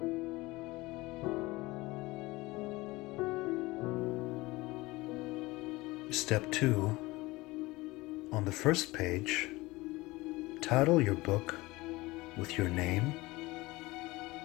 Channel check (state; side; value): quieter; right; 21.1 dB